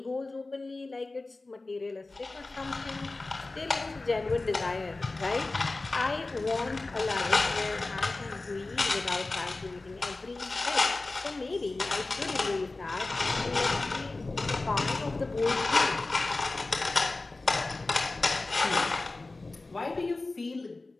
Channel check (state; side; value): quieter; right; 3.3 dB